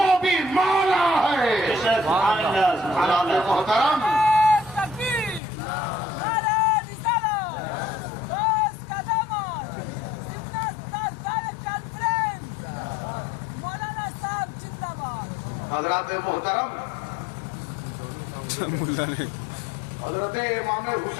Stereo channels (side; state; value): right; drops out; at 5.4 s